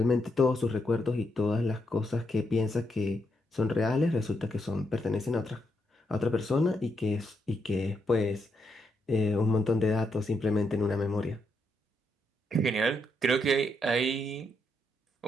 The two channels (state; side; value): normal; both; correlation 0.79